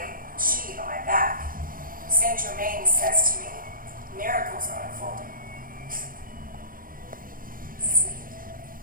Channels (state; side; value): late; left; 0.41 ms